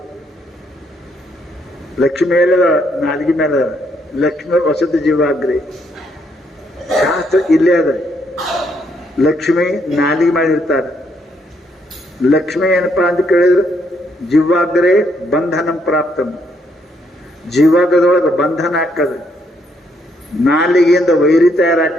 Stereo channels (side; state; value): both; normal; correlation 0.73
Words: ಲಕ್ಷ್ಮಿ ಮೇಲೆ ನಾಲ್ಗಿ ಮೇಲೆ ಲಕ್ಷ್ಮೀ ವಸತಿ ಜೀವಾಗ್ರಿ. ಶಾಸ್ತ್ರ ಇಲ್ಲೇ ಅದ. ಲಕ್ಷ್ಮಿ ನಾಲಿಗೆ ಮಾಡಿರ್ತಾರೆ. ಲಕ್ಷ್ಮಿ ಏನಪ್ಪಾ ಅಂತ ಕೇಳಿದ್ರೆ ಜೀವಾಗ್ರೇ ಬಂಧನಂ ಪ್ರಾಪ್ತಂ. ಜೀವಾಗದೊಳಗೆ ಬಂಧನ ಹಾಕದ. ನಾಲಿಗೆಯಿಂದ ವೈರಿ